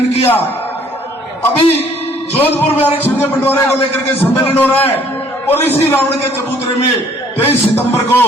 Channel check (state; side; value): normal; both; correlation 0.60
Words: किया। अभी जोधपुर में आरक्षण के बंटवारे को लेकर के सम्मेलन हो रहा है। और इसी रावण के चबूतरे में 23 सितंबर को